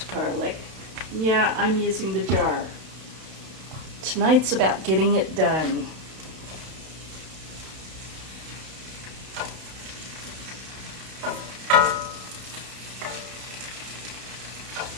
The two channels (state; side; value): late; left; 31 ms